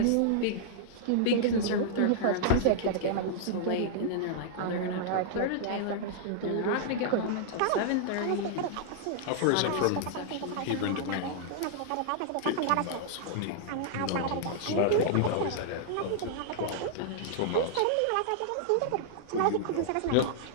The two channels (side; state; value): both; different; correlation -0.01